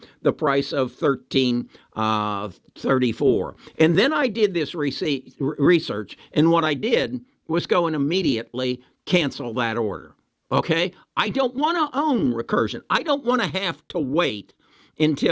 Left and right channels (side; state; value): both; identical; correlation 1.00